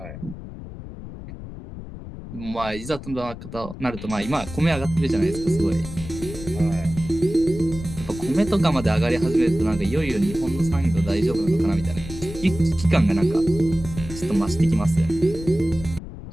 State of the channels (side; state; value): left; noise; rumble, 12 dB below the sound